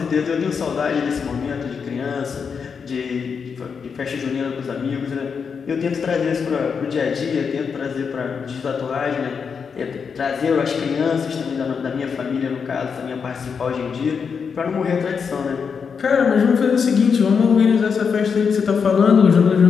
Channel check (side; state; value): right; quieter; 6.1 dB